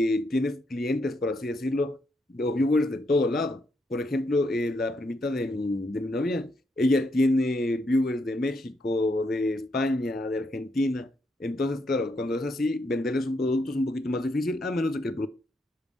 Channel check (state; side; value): normal; both; correlation 0.77